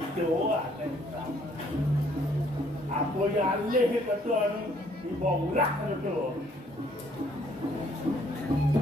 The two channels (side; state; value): both; normal; correlation 0.64